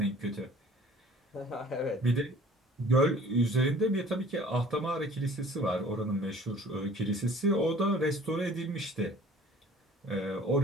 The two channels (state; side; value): normal; both; correlation 0.50